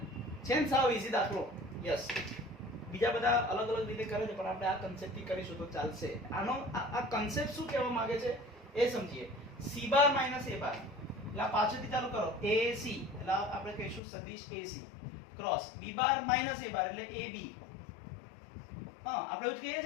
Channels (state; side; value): drops out; right; at 14.0 s